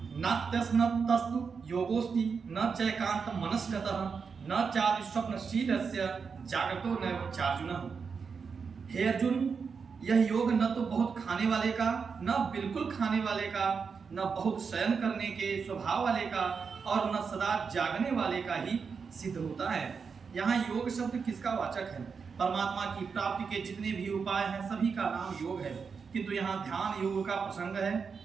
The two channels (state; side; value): quieter; left; 5.6 dB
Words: नात्यस्नतस्तु योगोस्ति न चैकांत मनस्कतः न चादि स्वप्नशीलस्य जागतो नैव चार्जुन। हे अर्जुन, यह योग न तो बहुत खाने वाले का, न बिल्कुल खाने वाले का, न बहुत शयन करने के स्वभाव वाले का और न सदा जागने वाले का ही सिद्ध होता है। यहाँ योग शब्द किसका वाचक है? परमात्मा की प्राप्ति के जितने भी उपाय हैं सभी का नाम योग है, किंतु यहाँ ध्यान योग का प्रसंग है,